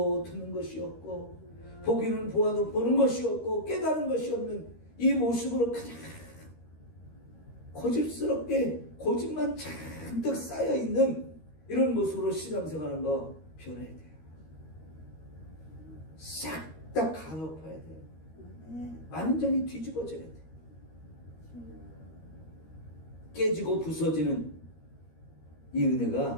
듣는 것이 없고 보기는 보아도 보는 것이 없고 깨달은 것이 없는 이 모습으로 그냥 고집스럽게 고집만 잔뜩 쌓여있는 이런 모습으로 신앙생활하는 거 변해야 돼요. 싹 다 갈아엎어야 돼요. 완전히 뒤집어져야 돼요. 깨지고 부서지는 이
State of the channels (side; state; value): right; late; 13 ms